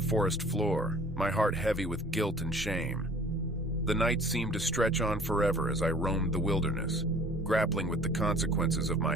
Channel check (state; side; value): normal; both; correlation 0.50